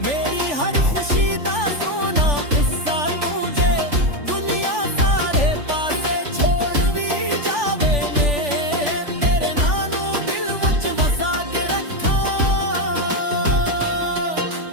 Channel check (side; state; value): left; late; 3.4 ms